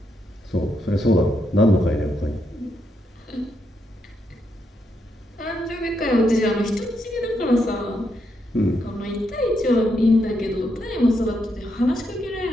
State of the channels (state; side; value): normal; both; correlation 0.80